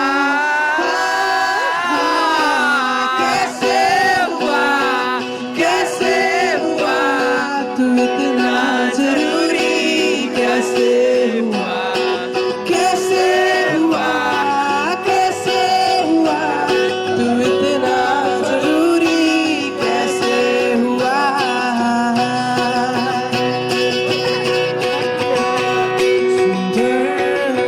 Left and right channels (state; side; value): identical; both; correlation 1.00